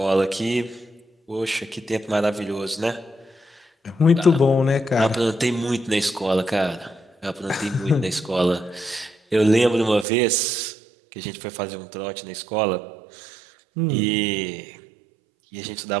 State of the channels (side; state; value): left; drops out; at 10.1 s